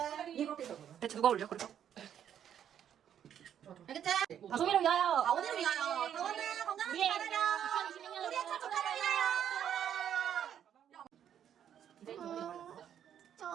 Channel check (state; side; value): quieter; left; 9.5 dB